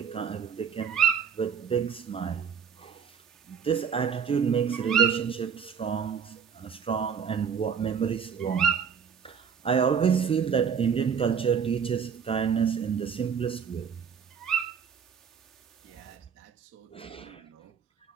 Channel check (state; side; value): quieter; left; 7.0 dB